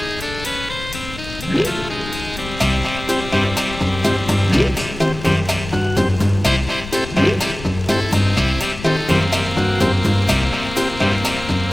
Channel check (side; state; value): left; noise; rumble, 12 dB below the sound